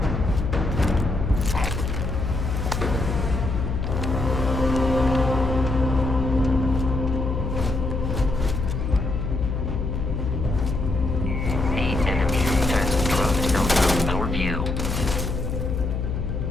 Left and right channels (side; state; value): left; noise; hum, 2 dB below the sound